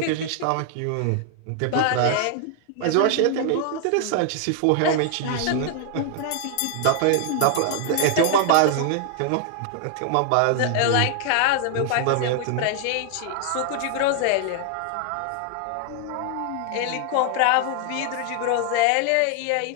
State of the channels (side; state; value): both; different; correlation 0.00